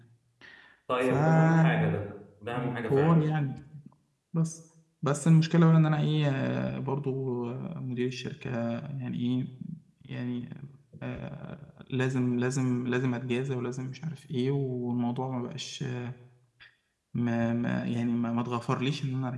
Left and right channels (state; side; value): identical; both; correlation 1.00